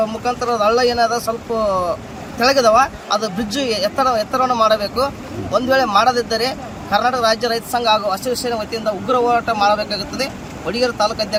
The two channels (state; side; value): identical; both; correlation 1.00